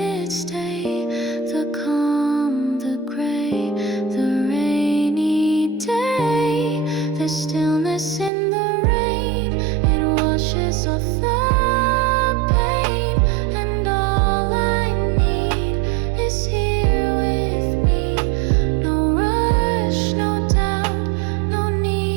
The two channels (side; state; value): left; drops out; at 8.3 s